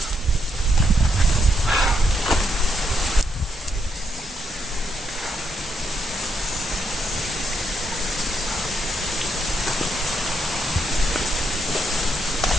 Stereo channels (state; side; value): normal; both; correlation 0.77